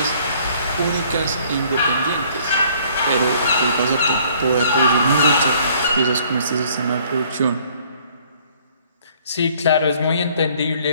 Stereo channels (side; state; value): both; inverted; correlation -0.59